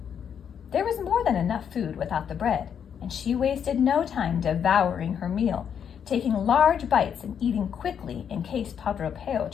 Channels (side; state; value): right; quieter; 8.0 dB